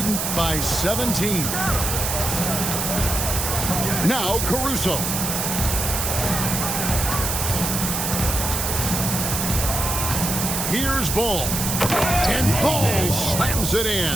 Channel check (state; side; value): noise; right; hiss, 1 dB below the sound